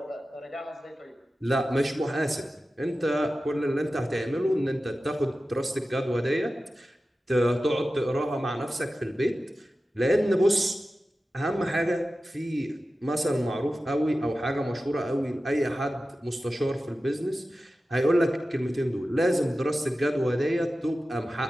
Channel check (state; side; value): normal; both; correlation 0.94